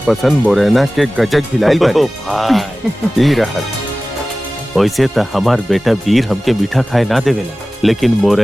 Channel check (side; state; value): both; normal; correlation 0.97